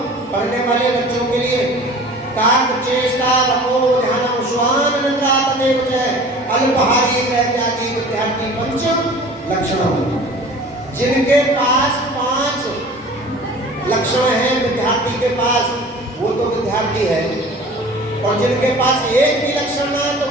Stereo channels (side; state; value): both; normal; correlation 0.43